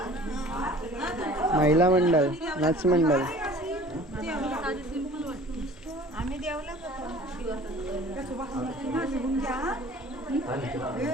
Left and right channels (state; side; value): normal; both; correlation 0.47